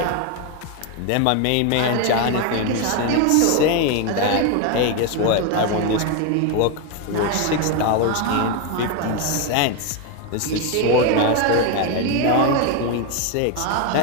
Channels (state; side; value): different; both; correlation 0.02